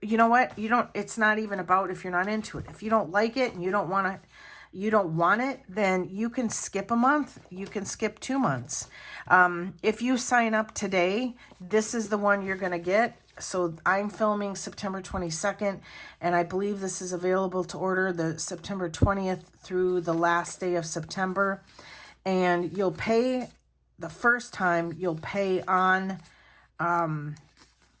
know what, it's not even about if you're not into it. If you don't like it and you don't want it, then you can skip a month. You can skip 2 months. If you sign up today, this is the one you're going to get. So I'm filming September 22nd, and I believe this is available to order the September 20th through the last day of September. And you'll pay the first time, you'll pay on,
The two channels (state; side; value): identical; both; correlation 1.00